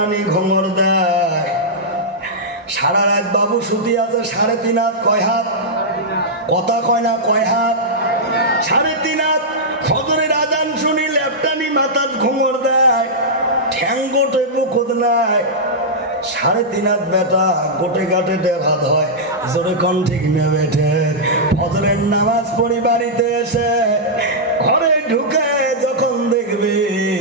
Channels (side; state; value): both; normal; correlation -0.09